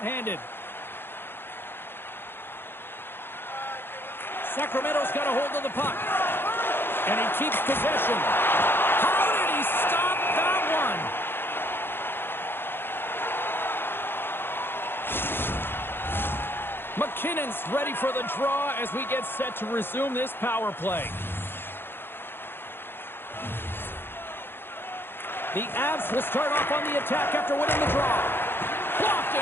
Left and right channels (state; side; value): late; right; 0.10 ms